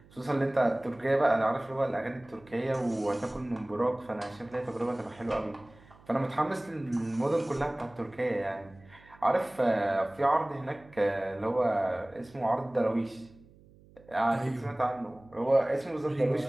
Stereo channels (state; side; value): noise; right; hum, 25 dB below the sound